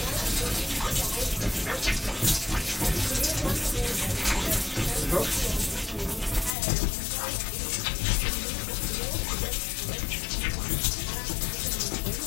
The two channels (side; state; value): right; drops out; at 6.6 s